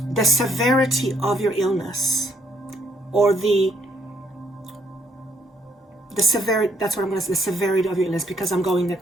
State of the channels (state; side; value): normal; both; correlation 0.69